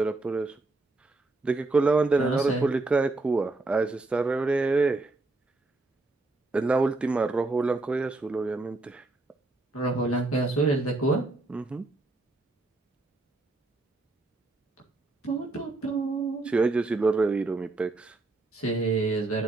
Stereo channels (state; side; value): quieter; left; 3.2 dB